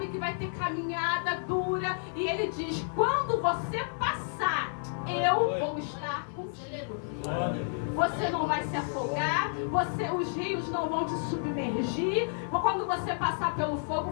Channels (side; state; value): right; silent; 57 dB below the other